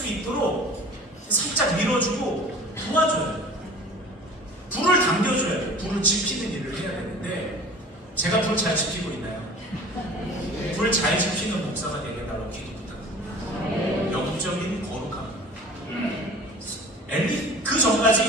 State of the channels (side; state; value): both; normal; correlation 0.43